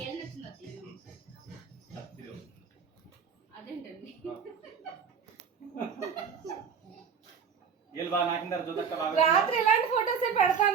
అదేంటండి రాత్రి ఇలాంటి ఫోటోస్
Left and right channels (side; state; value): left; quieter; 6.6 dB